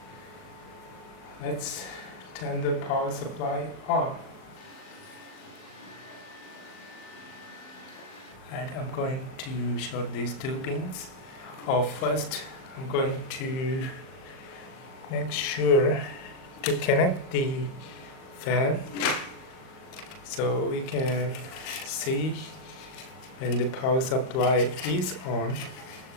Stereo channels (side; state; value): right; late; 39 ms